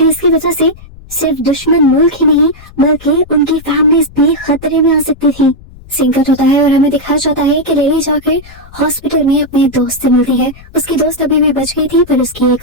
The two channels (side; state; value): left; noise; rumble, 20 dB below the sound